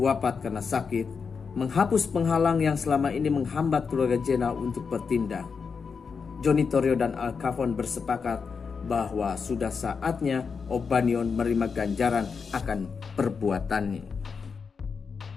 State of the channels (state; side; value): quieter; right; 5.6 dB